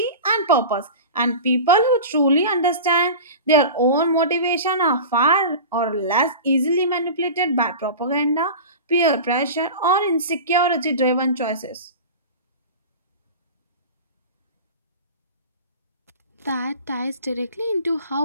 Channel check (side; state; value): both; inverted; correlation -0.32